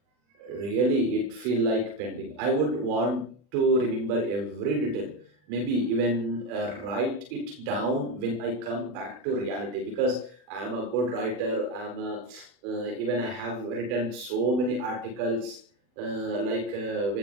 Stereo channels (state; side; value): late; left; 40 ms